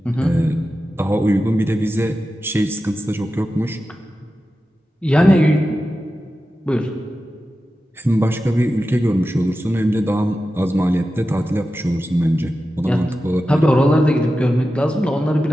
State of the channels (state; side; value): normal; both; correlation 0.93